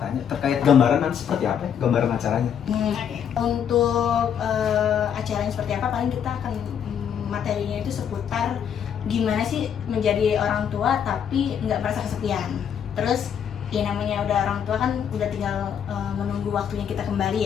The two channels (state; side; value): quieter; right; 8.4 dB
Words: terkait gambaran nanti seperti apa ya? Gambaran acaranya? Untuk acaranya seperti apa, paling kita akan materinya itu seputar gimana sih menjadi orang tua tapi nggak merasa kesepian. Terus ya namanya udah orang tua kan udah tinggal menunggu waktunya kita